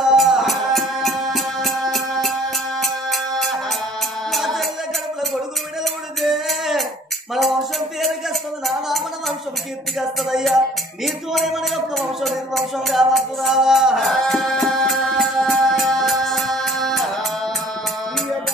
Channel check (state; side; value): normal; both; correlation 0.53